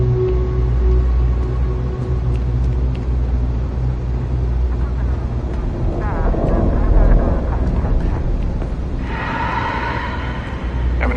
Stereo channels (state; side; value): identical; both; correlation 1.00